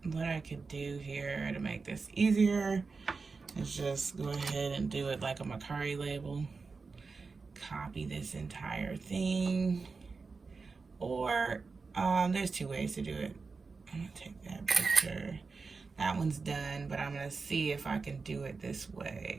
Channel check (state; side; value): quieter; left; 4.5 dB